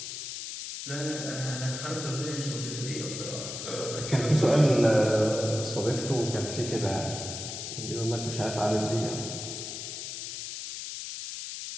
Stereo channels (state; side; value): noise; left; hiss, 7 dB below the sound